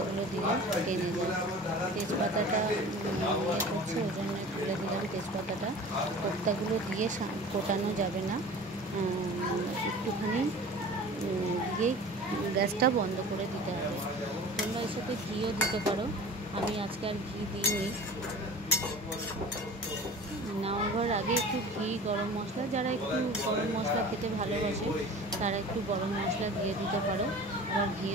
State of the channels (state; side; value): normal; both; correlation 0.40